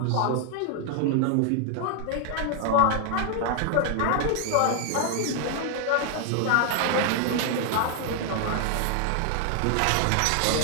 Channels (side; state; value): both; different; correlation 0.00